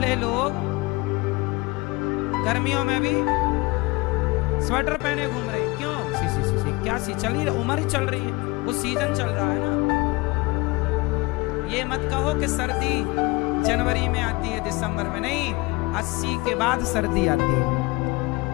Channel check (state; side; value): quieter; right; 24.1 dB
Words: लोग गर्मियों में भी स्वेटर पहने घूम रहे हैं, क्यों? 81 चल ही, उम्र ही चल रही है, वो सीजन चल रहा है ना। ये मत कहो कि सर्दी जनवरी में आती है, दिसंबर में नहीं, 80 के बाद सर्दी आती है।